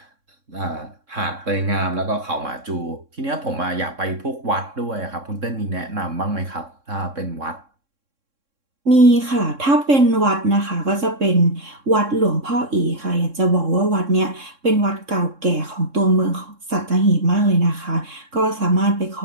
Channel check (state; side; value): late; left; 3.6 ms